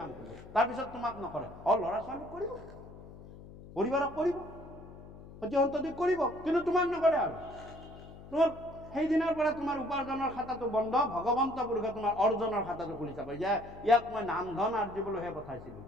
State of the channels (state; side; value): noise; left; hum, 17 dB below the sound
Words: কাম কৰিব, তাৰপিছত তোমাক নকৰে। ল'ৰা ছোৱালীক কৰিব, পৰিবাৰক কৰিব, সতি সন্ততিক কৰিব, কিন্তু তোমাক নকৰে। আৰু তোমাৰ সেইদিনাৰ পৰা তোমাৰ উপাৰ্জনৰ খাতাটো বন্ধ, ভগৱন্ত পুৰুষে তোমাৰ অৰ্জনৰ খাতাটো খুলি চাব। ইয়াক মই নাম ধন আৰ্জিবলৈহে পঠাইছিলো।